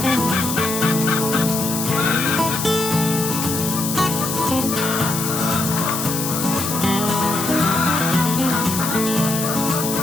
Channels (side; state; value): left; noise; hiss, 4 dB below the sound